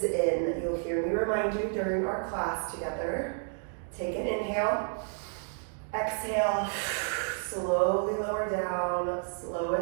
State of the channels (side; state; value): left; silent; 57 dB below the other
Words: in. You'll hear me remind you during our class together. Take an inhale. Exhale, slowly lower down,